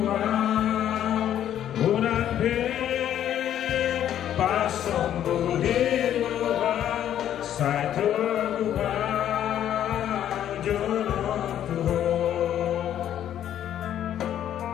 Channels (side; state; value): right; quieter; 10.8 dB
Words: bulan pasong budi luar saya tergubah jodoh Tuhan.